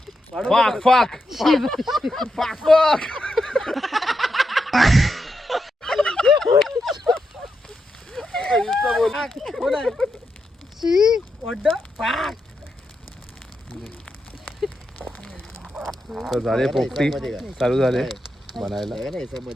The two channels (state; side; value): normal; both; correlation 0.85